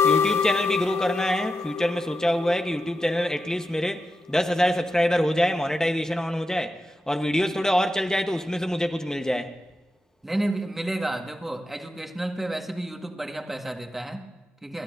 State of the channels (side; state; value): both; normal; correlation 0.88